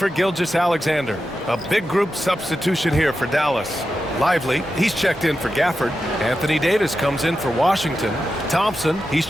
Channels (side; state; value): both; normal; correlation 0.90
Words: Gilgeous-Alexander. A big group substitution here for Dallas. Lively, he's checked in for Gafford. Anthony Davis comes in for Washington. Thompson, he's